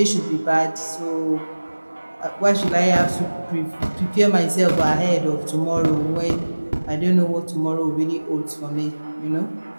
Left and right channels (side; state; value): both; inverted; correlation -1.00